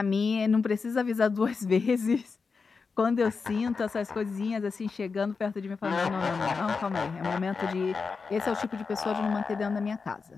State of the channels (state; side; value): quieter; right; 4.9 dB